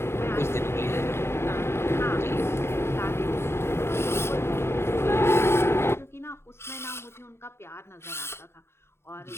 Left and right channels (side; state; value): right; late; 0.12 ms